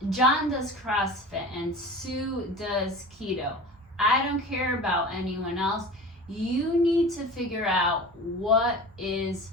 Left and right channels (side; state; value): both; normal; correlation 0.35